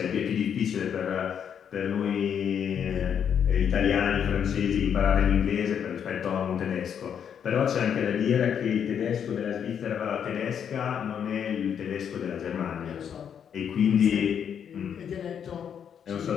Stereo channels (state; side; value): quieter; right; 8.1 dB